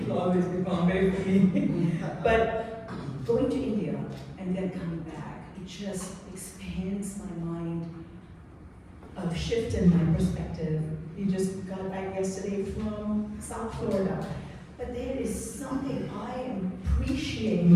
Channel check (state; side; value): identical; both; correlation 1.00